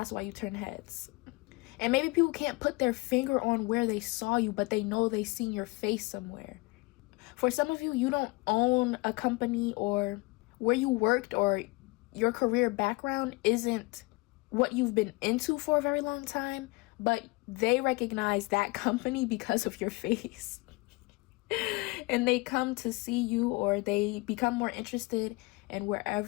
why you turn heads. And maybe people can't put their finger on where they saw you, but they know they seen your face somewhere. For some of you, you don't own a company, or where you worked or your career background isn't what you've been into for a very long time, but they recognize that company because of your face. And they come to see you, or they become more interested in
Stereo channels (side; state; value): right; quieter; 24.6 dB